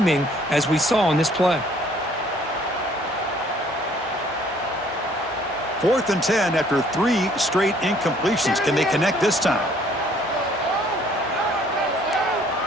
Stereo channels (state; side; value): normal; both; correlation 0.60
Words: as we saw on this play. 4th and 10 after 3 straight incompletions. Can they connect this time?